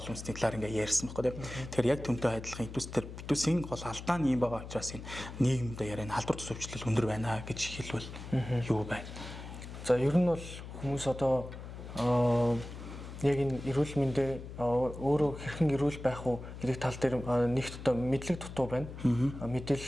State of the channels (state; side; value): noise; left; hum, 11 dB below the sound